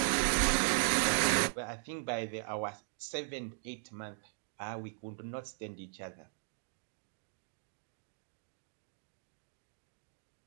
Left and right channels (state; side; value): silent; left; digital silence